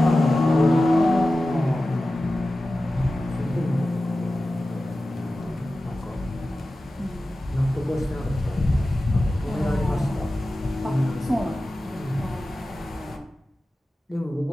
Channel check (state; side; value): normal; both; correlation 0.94